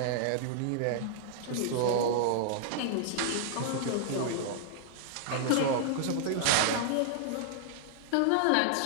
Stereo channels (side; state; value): both; different; correlation -0.01